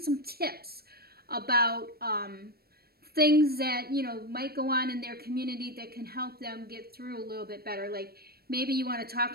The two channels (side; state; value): left; late; 0.45 ms